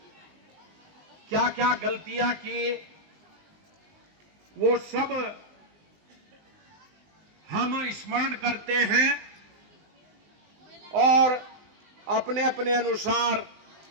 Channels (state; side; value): late; left; 19 ms